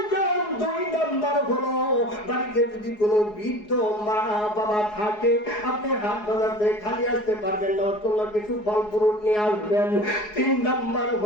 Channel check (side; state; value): right; late; 4.8 ms